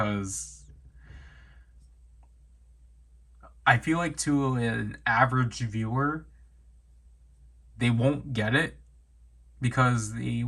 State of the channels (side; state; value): both; identical; correlation 1.00